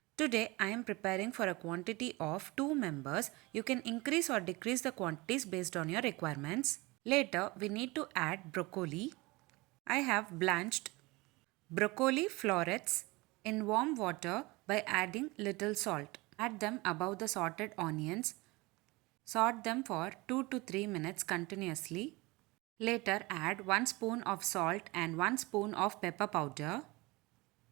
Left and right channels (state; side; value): quieter; left; 23.3 dB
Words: Today I am preparing for a quantity of 2 members. You can increase or decrease the quantities based on your requirements. Later we need to add broccoli. I have blanched broccoli florets in warm water by adding little salt. Add them above the sauteed onions. Saute them for 2 to 3 minutes continuously. Later add 1 spoon of salt and 1 spoon of pepper powder